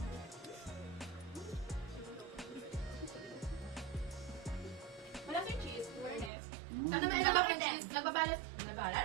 Malasa yung cheese. Awareness. Ano naman yung cheese? Nagbabalance.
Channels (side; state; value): left; drops out; at 6.3 s